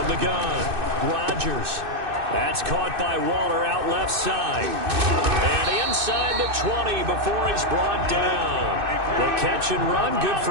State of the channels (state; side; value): late; left; 2.6 ms